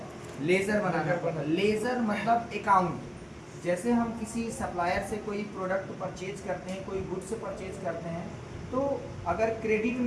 लेजर बनाना पड़ता है। लेजर मतलब अकाउंट। जैसे हम किसी सप्लायर से कोई प्रोडक्ट परचेज करते हैं, कोई गुड्स परचेज करते हैं, तो अगर क्रेडिट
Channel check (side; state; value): both; identical; correlation 1.00